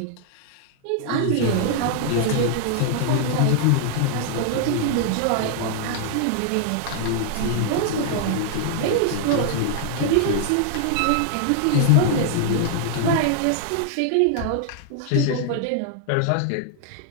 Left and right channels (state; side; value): different; both; correlation 0.00